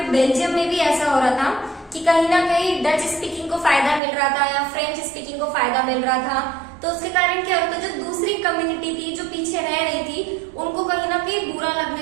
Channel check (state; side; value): drops out; left; at 4.0 s